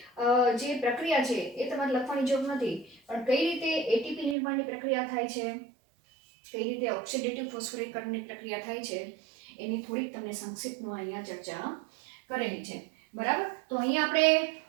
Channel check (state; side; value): drops out; left; at 4.4 s